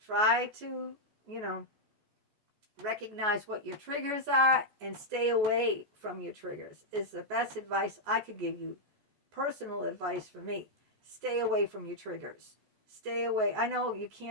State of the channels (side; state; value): left; late; 14 ms